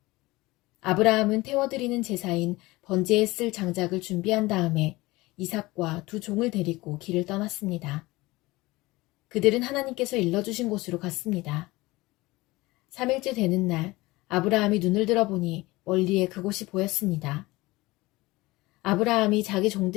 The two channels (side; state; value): right; quieter; 20.7 dB